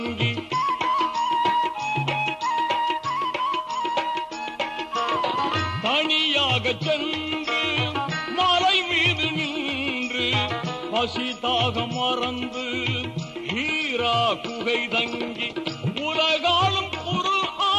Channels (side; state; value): both; identical; correlation 1.00